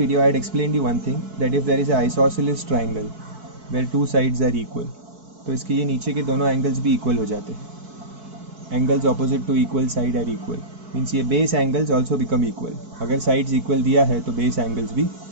I had explained you one thing, that if there is an isosceles triangle where two sides are equal, तो इसके ये नीचे के दोनों angles भी equal हो जाते हैं. Angles opposite to equal side are equal, means ये base angles also become equal. अगर साइड्स इक्वल दिया है तो बेस एंगल्स भी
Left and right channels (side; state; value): left; late; 4.6 ms